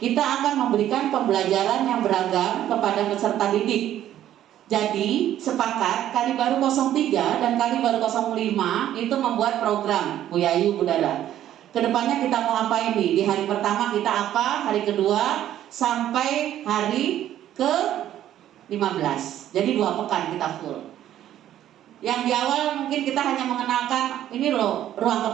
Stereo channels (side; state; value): left; quieter; 11.9 dB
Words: kita akan memberikan pembelajaran yang beragam kepada peserta didik. Jadi sepakat Kalibaru 03 dan Kalibaru 05 itu membuat program Bu Yayu, Bu Dara. Kedepannya kita mau apa ini? Di hari pertama kita apa? Hari kedua sampai hari ke-15. Jadi 2 pekan kita full. Yang di awal mungkin kita hanya mengenalkan ini loh ruang